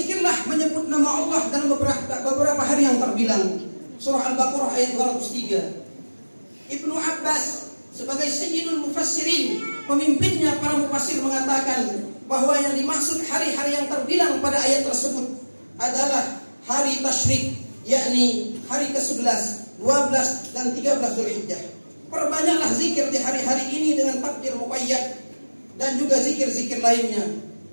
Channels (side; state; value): both; inverted; correlation -1.00